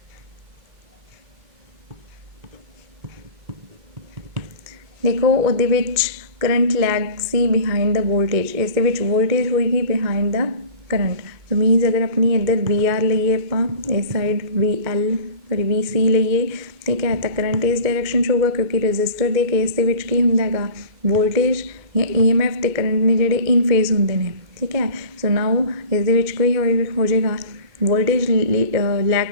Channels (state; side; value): late; left; 2.2 ms